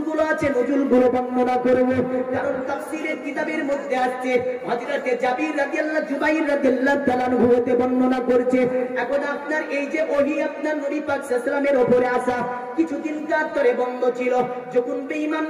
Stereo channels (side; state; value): both; identical; correlation 1.00